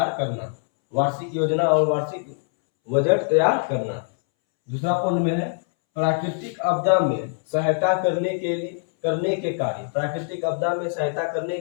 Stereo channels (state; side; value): silent; right; 63 dB below the other